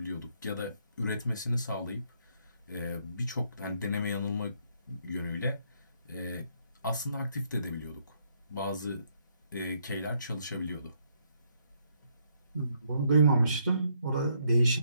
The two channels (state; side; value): inverted; both; correlation -0.72